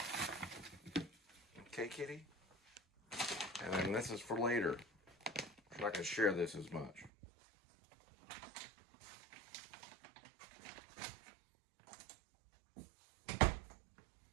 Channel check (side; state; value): left; drops out; at 7.1 s